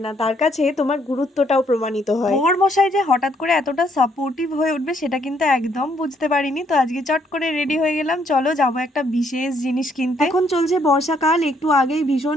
না, তার কাছে তোমার গুরুত্বটাও প্রমাণিত হয়। বর মশাই যে হঠাৎ করে এতটা সাপোর্টিভ হয়ে উঠবে সেটা কিন্তু একদম বুঝতে পারিনি। তো আজকে চট করে রেডি হয়ে গেলাম, চলো যাবো একটা বিশেষ জিনিস কিনতে। এখন চলছে বর্ষাকাল, একটু আগেই ভীষণ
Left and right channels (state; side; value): normal; both; correlation 0.69